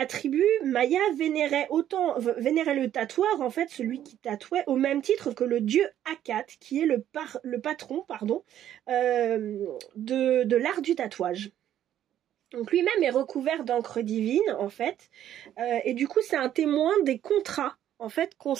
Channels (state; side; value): quieter; left; 11.2 dB